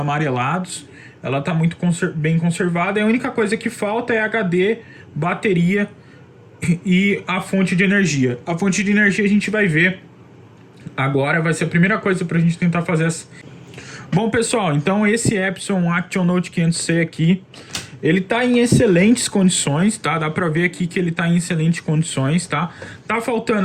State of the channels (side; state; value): both; identical; correlation 1.00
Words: Ela está muito bem conservada e a única coisa que falta é HD, bateria e a fonte de energia. A fonte de energia a gente vai ver agora, vai ser a primeira coisa para a gente tentar fazer essa. Bom, pessoal, então esse Epson Action Note 500C aqui, ele tá em excelentes condições, tá? Dá pra ver aqui que ele tá em excelentes condições, tá? Tá